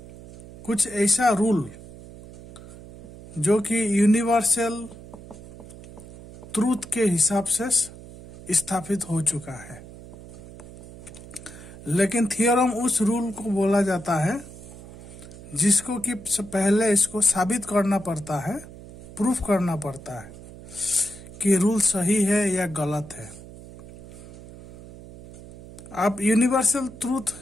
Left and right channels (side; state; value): right; noise; hum, 16 dB below the sound